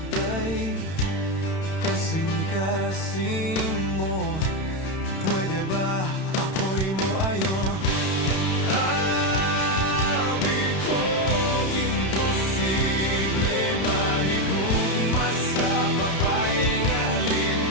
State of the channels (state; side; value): late; right; 31 ms